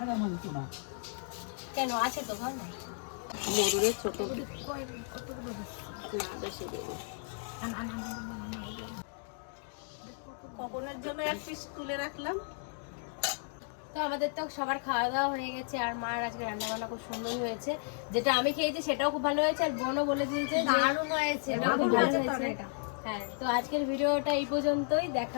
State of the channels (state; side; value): silent; right; 55 dB below the other